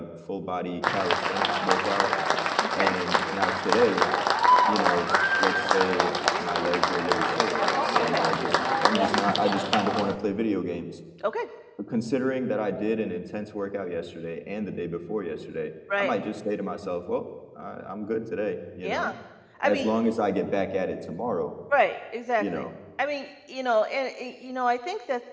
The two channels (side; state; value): both; identical; correlation 1.00